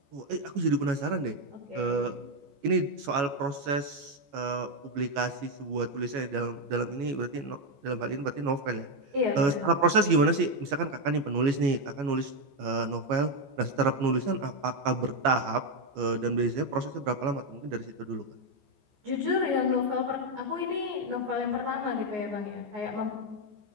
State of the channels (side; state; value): left; late; 14 ms